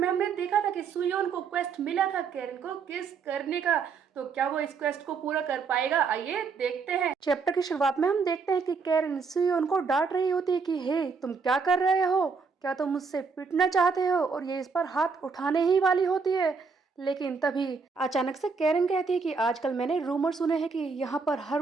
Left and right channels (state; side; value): quieter; left; 5.2 dB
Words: हमने देखा था कि सुयोन को क्वेस्ट मिला था कैरन को किस करने का। तो क्या वो इस क्वेस्ट को पूरा कर पाएगा? आइए देखते हैं। चैप्टर की शुरुआत में हम देखते हैं कि कैरन सुयोन को डांट रही होती है कि हे तुम क्या कर रहे हो, क्या तुम मुझसे पिटना चाहते हो, और ये इस पर हाथ उठाने ही वाली होती है। लेकिन तभी अचानक से कैरन कहती है कि आजकल मैंने रूमर सुने हैं कि यहाँ पर हर